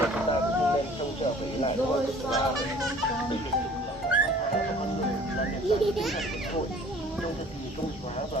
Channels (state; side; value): normal; both; correlation 0.51